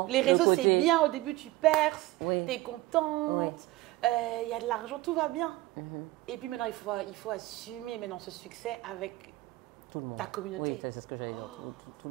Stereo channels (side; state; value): left; quieter; 18.5 dB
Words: les le réseaux côté- c'est bien. Au début, tu perces, Oui. tu es contente, il y a de l'argent, tout va bien. Mhm. Et puis maintenant, il faut assumer maintenant ce succès avec Tout le monde. ta communauté. Oui, c'est ce que j'allais dire. Tout